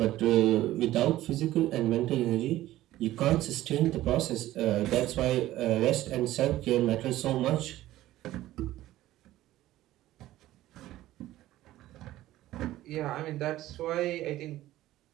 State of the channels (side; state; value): left; quieter; 15.1 dB